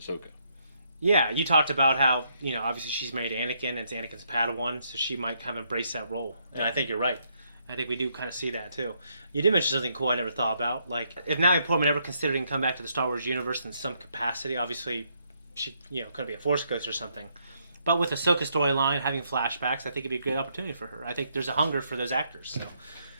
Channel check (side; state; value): both; inverted; correlation -0.74